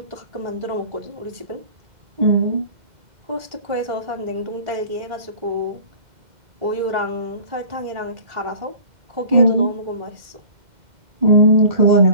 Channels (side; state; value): left; late; 2.1 ms